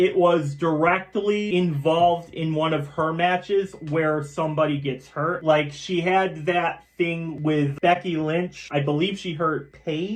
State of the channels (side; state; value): both; identical; correlation 1.00